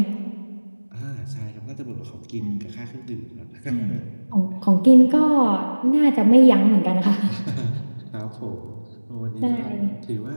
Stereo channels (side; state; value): both; inverted; correlation -1.00